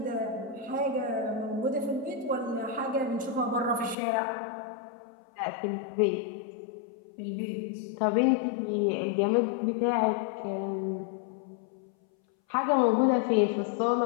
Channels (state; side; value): drops out; right; at 4.0 s